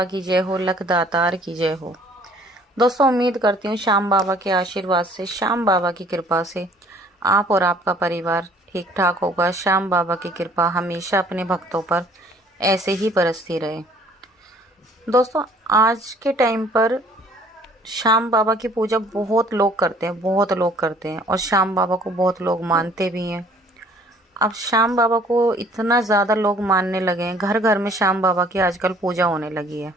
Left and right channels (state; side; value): normal; both; correlation 0.56